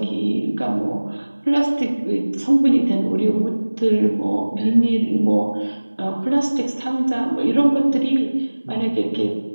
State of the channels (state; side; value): inverted; both; correlation -1.00